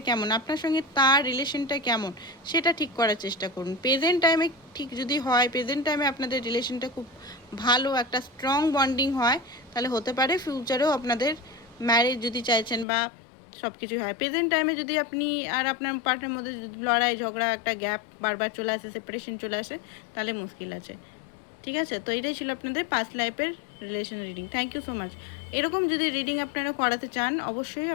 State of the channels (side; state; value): right; drops out; at 12.9 s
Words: কেমন, আপনার সঙ্গে তার রিলেশনটা কেমন, সেটা ঠিক করার চেষ্টা করুন। প্রেজেন্ট টাইমে ঠিক যদি হয়, প্রেজেন্ট টাইমে আপনাদের রিলেশনটা খুব ভালো একটা স্ট্রং বন্ডিং হয়, তাহলে হতে পারে ফিউচারেও আপনাদের ম্যারেজ যদি চাইছেন বা সব কিছুই হয়। প্রেজেন্ট টাইমে যদি আপনি আর আপনার পার্টনারের মধ্যে লড়াই ঝগড়া একটা গ্যাপ বারবার চলে আসে, সেপারেশন চলে আসে, তাহলে মুশকিল আছে, ঠিক আছে। তো এটাই ছিল আপনাদের পাস্ট লাইফের relation reading. Thank you so much. এরকম যদি রিডিং আপনারা করাতে চান অবশ্যই